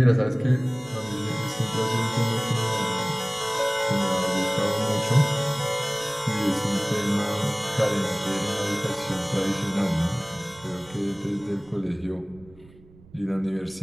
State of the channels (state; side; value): noise; right; rumble, 24 dB below the sound